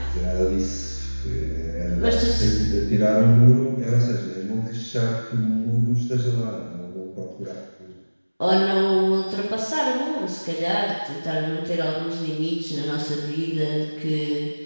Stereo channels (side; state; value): both; inverted; correlation -1.00